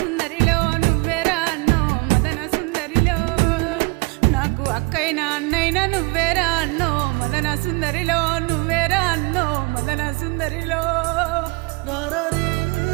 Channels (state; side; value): quieter; left; 27.9 dB